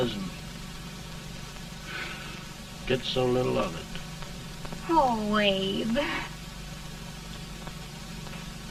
and gets so little of it. Oh, Abe.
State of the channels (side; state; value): both; identical; correlation 1.00